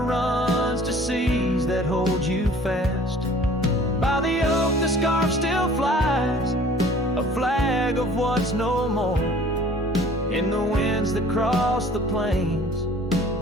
runs to seas that hold you fast. By the oak, the scarf still flies, a flag of what's no more. In the winds that cross the plains,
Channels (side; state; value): both; normal; correlation 0.50